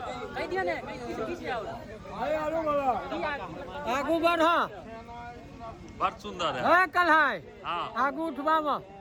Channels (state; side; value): identical; both; correlation 1.00